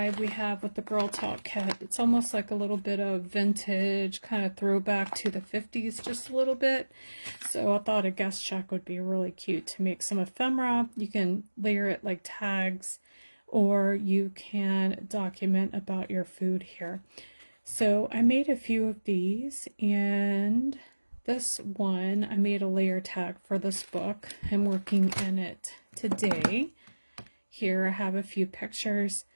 we have with the Girl Talk kit. It's almost like a little bit of vintage, kind of throwback to the 50s, just a little bit. So I thought a guest check would be really cute to make some ephemera. You can layer it like tags, or you can document about your food here. So I made a few of these, and this one, I made a layer tag for this book. I'm working in it today. Here I have a few pictures.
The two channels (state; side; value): inverted; both; correlation -1.00